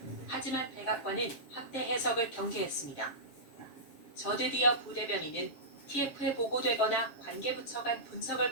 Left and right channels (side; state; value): right; late; 7.0 ms